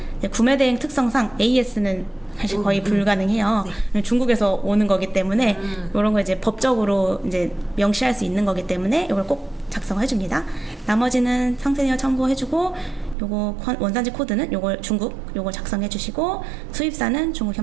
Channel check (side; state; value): left; drops out; at 13.2 s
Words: 구매 대행 특성상 AS는 사실 거의 불가능해요. 네. 중국에서 오는 거기 때문에 이런 거 이제 법적으로 이제 명시할 수 있는 거기 때문에 이걸 꼭 작성해 줍니다. 나머지는 상세 내용 참고해주고, 요거 원산지 코드는 요걸 중국 요걸 작성해 주시고, 수입사는 중국